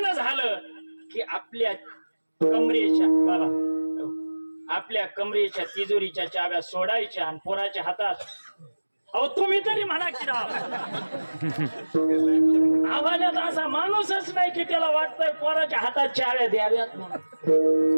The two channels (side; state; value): both; inverted; correlation -1.00